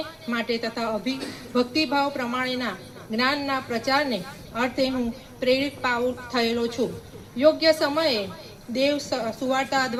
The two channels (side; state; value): both; identical; correlation 1.00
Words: માટે તથા ભક્તિભાવ પ્રમાણેના જ્ઞાનના પ્રચારને અર્થે હું પ્રેરિત પાઉલ થયેલો છું. યોગ્ય સમયે દેવ સુવાર્તા